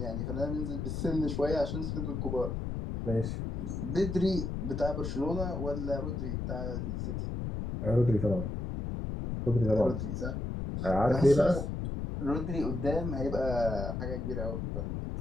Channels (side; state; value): left; noise; rumble, 3 dB below the sound